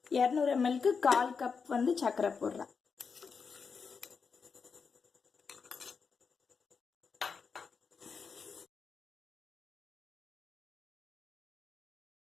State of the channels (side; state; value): right; quieter; 5.5 dB